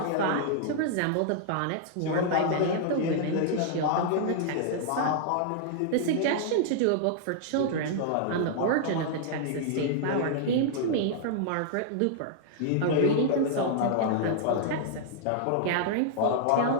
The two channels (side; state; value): both; different; correlation -0.01